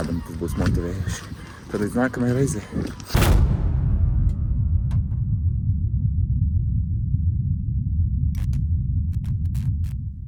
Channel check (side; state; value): both; identical; correlation 1.00